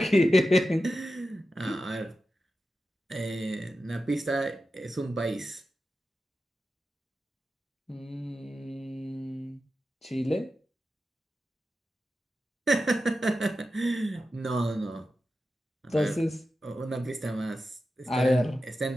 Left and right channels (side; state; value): both; normal; correlation 0.91